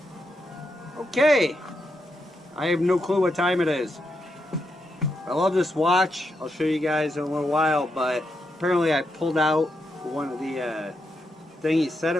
okay. I have no clue what time it is. I love this watch. I'll show you guys in a little while, but apparently I pulled out one of the thing he set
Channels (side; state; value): both; normal; correlation 0.83